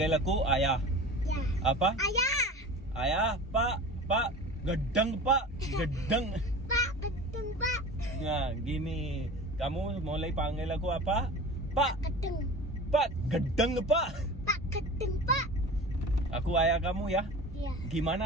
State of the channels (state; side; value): normal; both; correlation 0.36